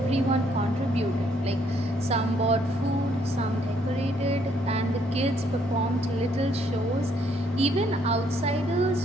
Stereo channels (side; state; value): both; normal; correlation 0.68